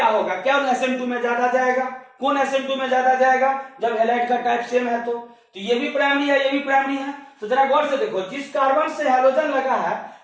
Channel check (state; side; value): identical; both; correlation 1.00